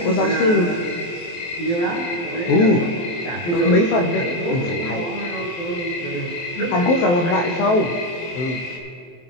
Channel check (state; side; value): late; right; 23 ms